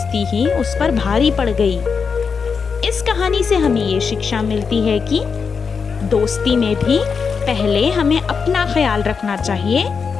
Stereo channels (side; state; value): right; quieter; 5.7 dB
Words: ही उस पर भारी पड़ गई। इस कहानी से हमें ये शिक्षा मिलती है कि दोस्ती में भी पहले हमें अपना ख्याल रखना चाहिए,